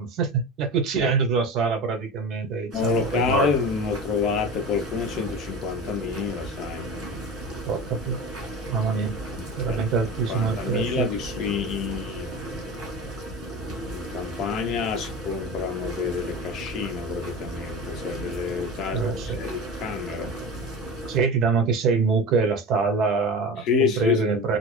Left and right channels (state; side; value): normal; both; correlation 0.30